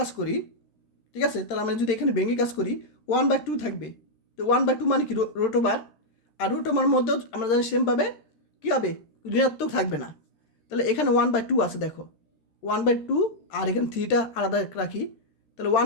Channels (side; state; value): right; late; 13 ms